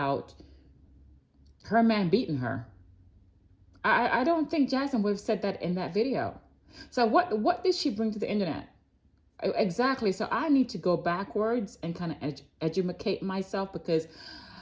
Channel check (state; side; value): identical; both; correlation 1.00